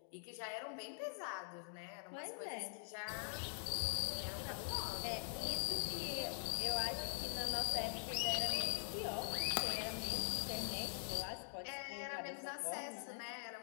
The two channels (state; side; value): silent; right; digital silence